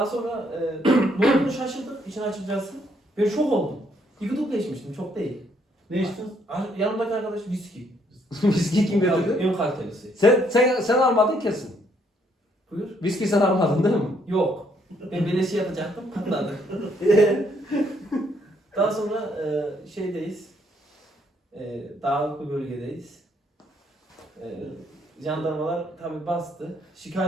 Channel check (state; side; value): normal; both; correlation 0.70